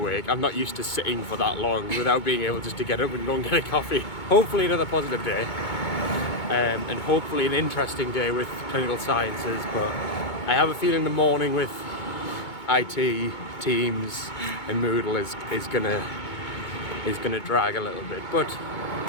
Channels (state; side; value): late; right; 2.2 ms